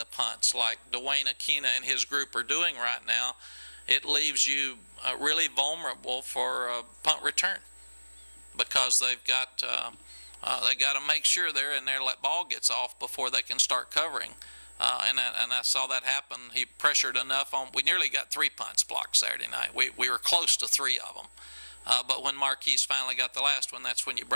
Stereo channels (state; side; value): inverted; both; correlation -1.00